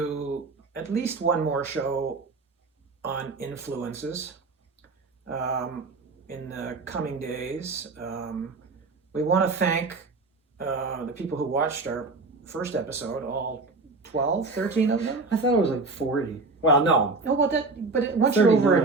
at least one more show on influences in the coming days. We want to thank the people who watched our first episode, all 12, 13 of them. I thought it was like 40. Well, no. Oh, well, once you're over a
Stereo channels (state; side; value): quieter; left; 3.7 dB